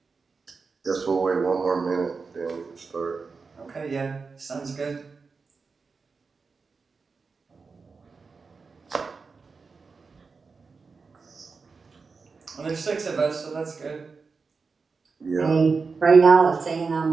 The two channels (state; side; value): quieter; left; 4.7 dB